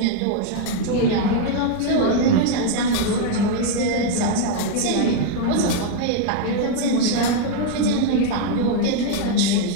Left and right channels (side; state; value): both; different; correlation 0.00